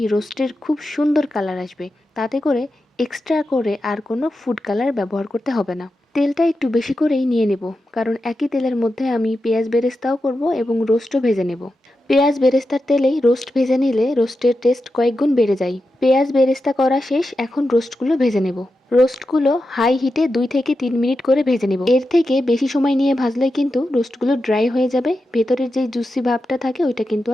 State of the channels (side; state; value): both; normal; correlation 0.90